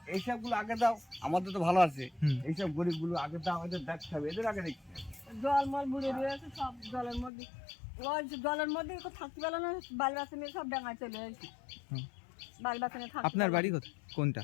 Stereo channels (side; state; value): right; drops out; at 7.3 s